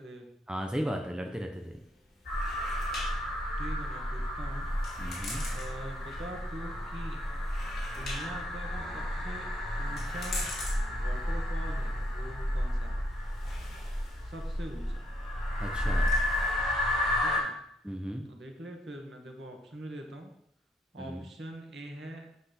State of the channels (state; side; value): normal; both; correlation 0.74